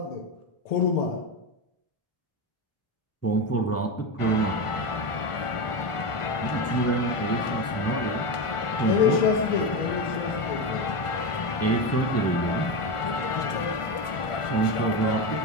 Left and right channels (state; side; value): late; right; 1.4 ms